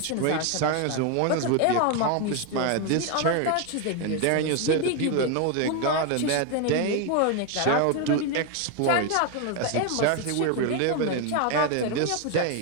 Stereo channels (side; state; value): both; different; correlation 0.01